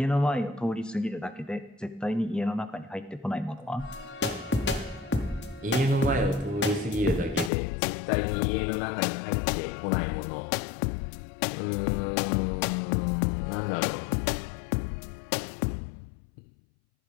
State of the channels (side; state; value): right; drops out; at 7.5 s